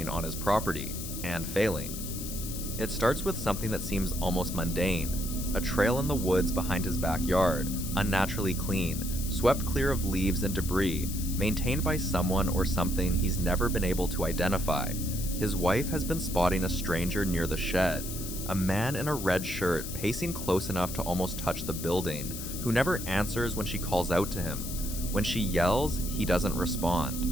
on his property, and failing. It starts with something that seems almost mundane: a trail in the woods behind his backyard, unnaturally clean, swept clear of leaves and debris, maintained by someone or something he's never been able to identify. His wife has been spotting a stranger near the shed, a man in a red shirt pacing close enough to almost touch the building, who never answers when she calls out to him. When she yells, he doesn't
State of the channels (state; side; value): noise; left; hiss, 8 dB below the sound